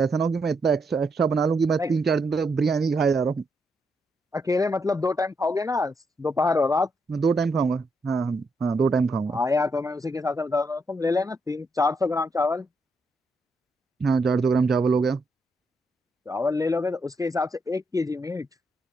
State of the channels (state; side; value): normal; both; correlation 0.79